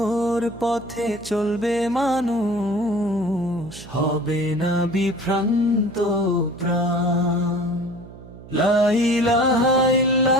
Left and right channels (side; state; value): right; noise; hum, 18 dB below the sound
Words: পথে চলবে মানুষ, হবে না বিভ্রান্ত প্রাণ। লা ইলাহা